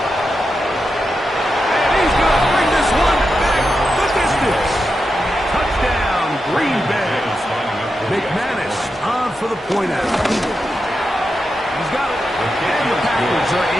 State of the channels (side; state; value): both; normal; correlation 0.88